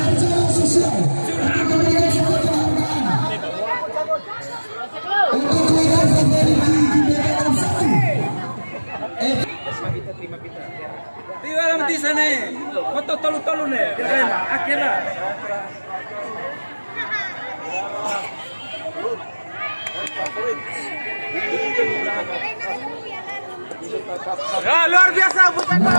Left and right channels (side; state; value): both; inverted; correlation -1.00